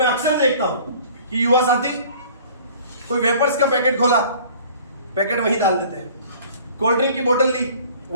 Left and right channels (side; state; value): both; inverted; correlation -0.50